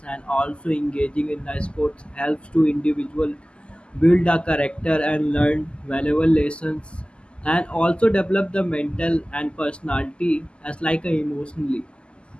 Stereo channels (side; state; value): right; late; 0.052 ms